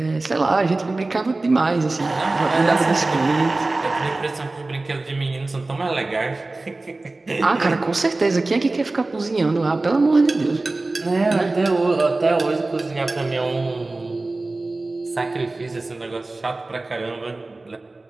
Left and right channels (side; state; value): left; quieter; 3.1 dB